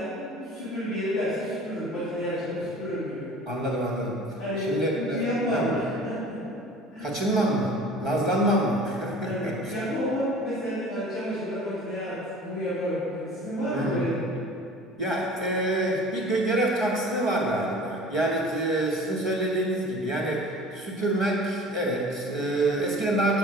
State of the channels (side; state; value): both; normal; correlation 0.44